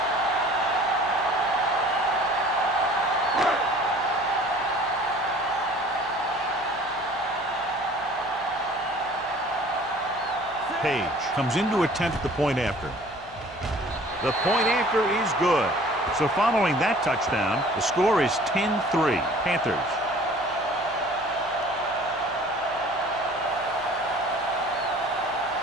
Page comes in to attempt the point after. The point after is good. So following that touchdown, the score is 10-3, Panthers.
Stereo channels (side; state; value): left; noise; hum, 23 dB below the sound